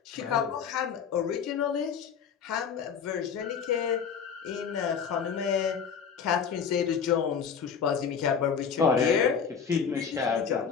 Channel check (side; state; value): right; quieter; 6.8 dB